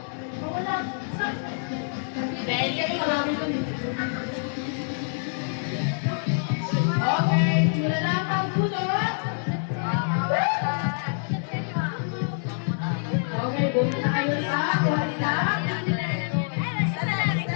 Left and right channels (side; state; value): right; silent; 61 dB below the other